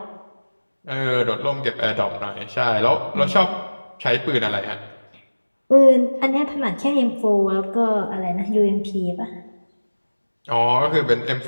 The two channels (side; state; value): both; inverted; correlation -1.00